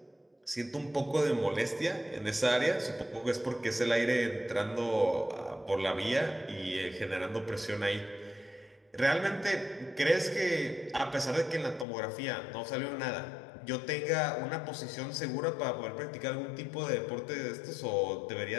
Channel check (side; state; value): right; drops out; at 11.9 s